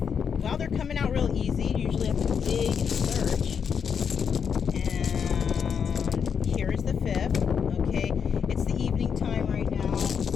Wow, they're coming out real easy. Usually I have to dig and search. And here's the fifth. Okay, it's the evening time right now,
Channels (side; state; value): right; quieter; 6.9 dB